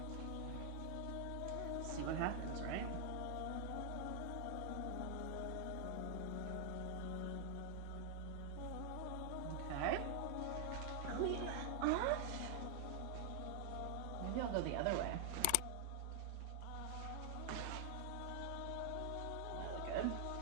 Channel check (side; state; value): both; different; correlation 0.00